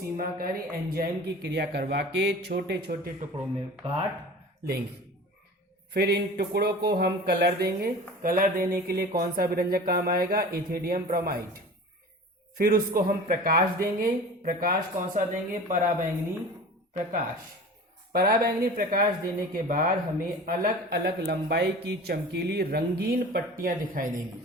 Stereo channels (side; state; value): both; normal; correlation 0.38